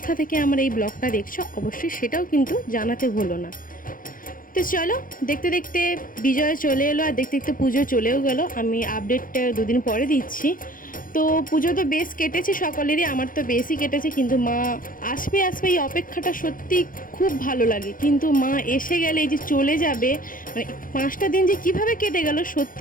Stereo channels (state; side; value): late; right; 0.40 ms